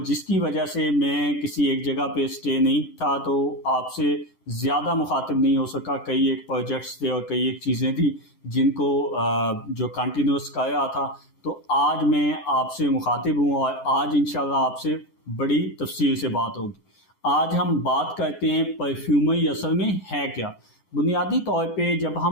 जिसकी वजह से मैं किसी एक जगह पे स्टे नहीं था, तो आपसे ज़्यादा मुखातिब नहीं हो सका। कई एक प्रोजेक्ट्स थे और कई एक चीज़ें थी जिनको जो कंटिन्यूस कर रहा था। तो आज मैं आपसे मुखातिब हूँ और आज इंशाल्लाह आपसे बड़ी तफसील से बात होगी। आज हम बात करते हैं परफ्यूमरी असल में है क्या। बुनियादी तौर पे जब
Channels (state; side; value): late; right; 11 ms